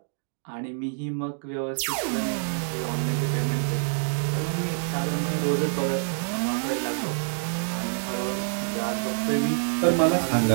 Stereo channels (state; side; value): silent; left; digital silence